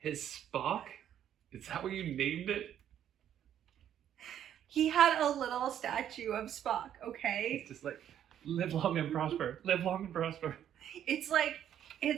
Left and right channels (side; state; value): left; quieter; 10.2 dB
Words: Spock? Is that what you named it? He had a little statue of Spock, okay? It's just like, live long and prosper. Live long and prosper. It's like